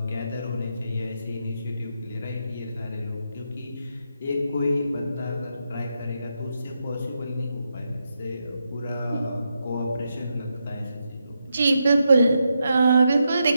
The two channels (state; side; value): inverted; both; correlation -0.84